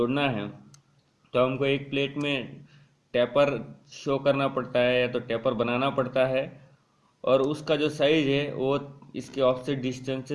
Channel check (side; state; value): both; identical; correlation 1.00